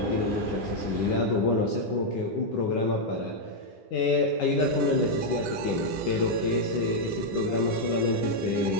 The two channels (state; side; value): late; right; 10 ms